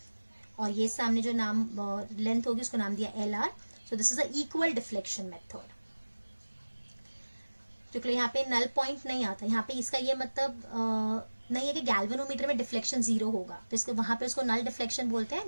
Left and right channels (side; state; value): both; inverted; correlation -1.00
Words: और ये सामने जो नाम लेंथ होगी उसको नाम दिया LR। So this is a equal deflection method. क्योंकि यहाँ पे नल पॉइंट नहीं आता, यहाँ पे इसका ये मतलब नहीं है कि गैल्वेनोमीटर में डिफ्लेक्शन 0 होगा, तो इसको वहां पे उसको नल डिफ्लेक्शन बोलते हैं।